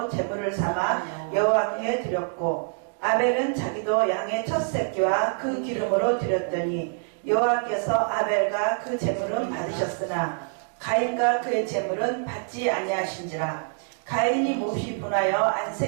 제물을 삼아 여호와께 드렸고 아벨은 자기도 양의 첫 새끼와 그 기름으로 드렸더니 여호와께서 아벨과 그 제물은 받으셨으나 가인과 그의 제물은 받지 아니하신지라. 가인이 몹시 분하여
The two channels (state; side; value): silent; left; 61 dB below the other